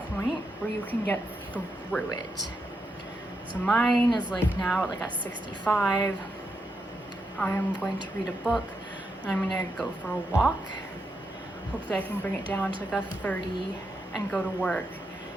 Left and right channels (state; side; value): normal; both; correlation 0.83